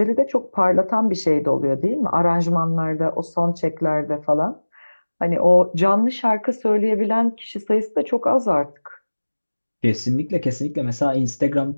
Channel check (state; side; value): inverted; both; correlation -1.00